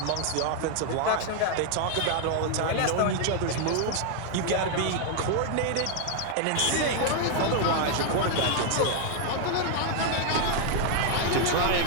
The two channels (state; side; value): different; both; correlation 0.00